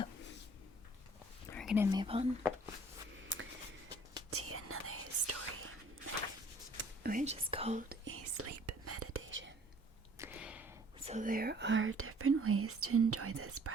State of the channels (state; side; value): normal; both; correlation 0.55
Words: we're gonna move on to another story, which is called a sleep meditation. So there are different ways to enjoy this